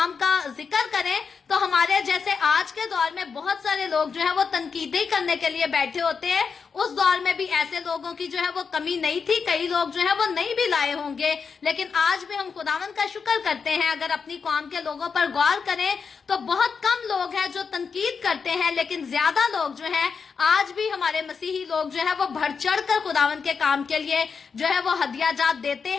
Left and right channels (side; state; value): right; quieter; 5.7 dB